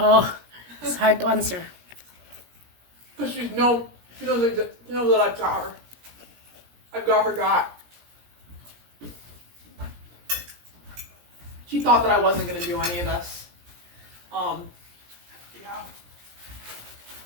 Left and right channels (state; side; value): late; left; 17 ms